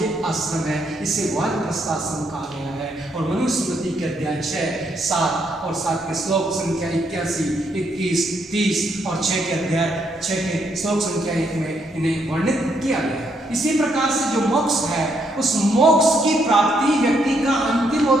आश्रम है। इसे वानप्रस्थ आश्रम कहा गया है। और मनुस्मृति के अध्याय 6, 7 और 7 के श्लोक संख्या 81, 21, 30 और 6 के अध्याय 6 के श्लोक संख्या 1 में इन्हें वर्णित किया गया है। इसी प्रकार से जो मोक्ष है, उस मोक्ष की प्राप्ति व्यक्ति का अंतिम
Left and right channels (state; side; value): normal; both; correlation 0.74